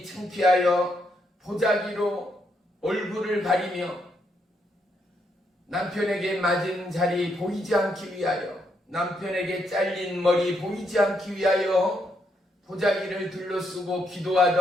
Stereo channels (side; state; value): both; normal; correlation 0.77